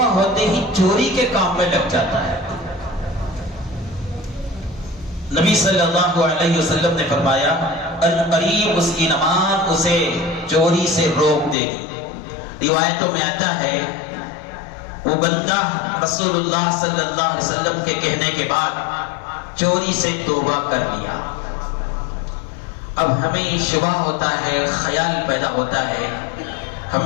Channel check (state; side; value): drops out; right; at 11.6 s